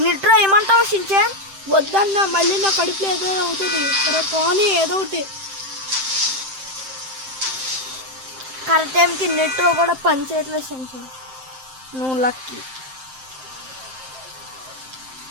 నిట్రా ఏమంటావు షించాన్? వద్దన్నా, మళ్ళీ నా కడుపులో ఏదో అవుతుంది. సరే పోనీ ఏదో ఒకటి. కరెక్ట్ టైంకి నిట్రో కూడా పని చేయట్లేదు షించాన్. నువ్వు లక్కీ.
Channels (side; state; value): left; late; 7.7 ms